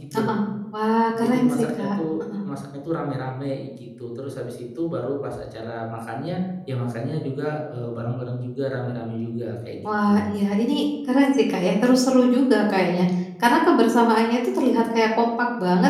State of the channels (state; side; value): identical; both; correlation 1.00